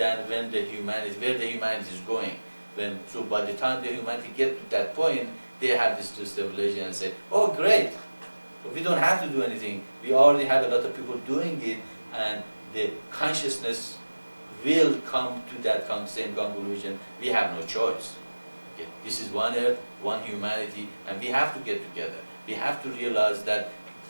where the humanity is going. So by the time the humanity get to that point, they have this revelation and say, oh great, we don't have to do anything. We already have a lot of people doing it, and the consciousness will come to that same conclusion. We have no choice. Okay. This is one earth, one humanity, and we have to get together. We have to realize that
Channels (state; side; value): inverted; both; correlation -1.00